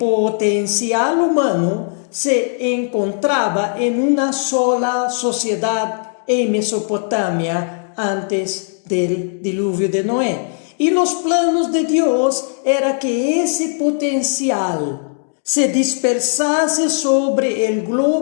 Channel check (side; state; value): right; silent; digital silence